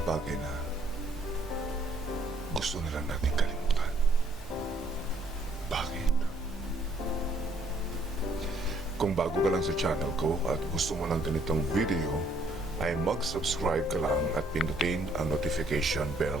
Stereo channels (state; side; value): normal; both; correlation 0.66